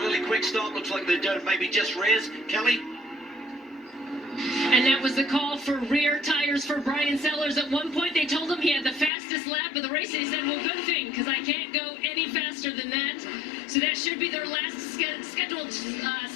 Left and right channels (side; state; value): right; drops out; at 9.1 s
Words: quick stop. Looks like they're doing maybe just rears. Kelly? And that was the call for rear tires for Brian Sellers. At one point, they told him he had the fastest lap of the race. He said, well, good thing, because I can't go any faster than that. So that should be their last scheduled